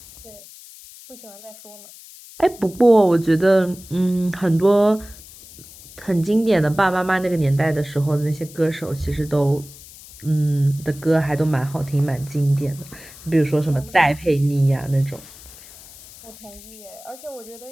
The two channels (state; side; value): noise; left; hiss, 19 dB below the sound